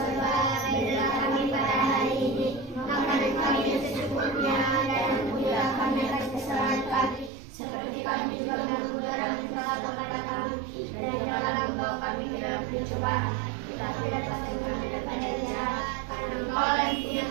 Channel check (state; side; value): drops out; left; at 7.3 s